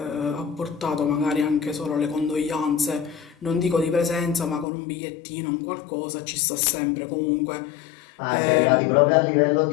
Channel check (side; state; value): right; drops out; at 4.7 s